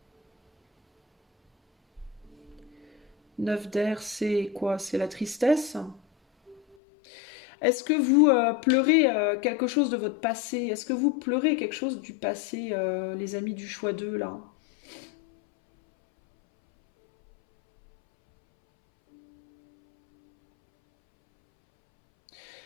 9 d'air, c'est quoi? C'est la tristesse. Est-ce que vous pleurez quelque chose de votre passé? Est-ce que vous pleurez quelque chose du passé, les amis du choix 2, là?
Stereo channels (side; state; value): right; drops out; at 6.8 s